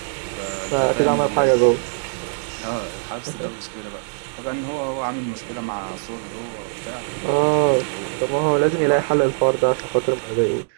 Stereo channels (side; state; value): left; silent; digital silence